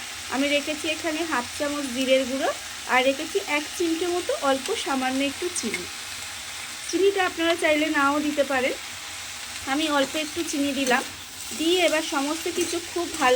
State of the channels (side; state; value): both; identical; correlation 1.00